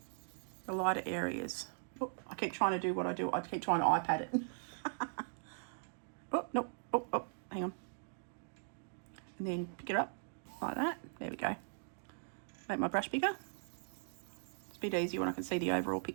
the lighter areas. Oh, I keep trying to do what I do. I keep trying to iPad it. Oh, nope. Oh, hang on. And then pick it up like that. There we go. Make my brush bigger. It's a bit easier when I can see the overall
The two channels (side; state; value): left; silent; digital silence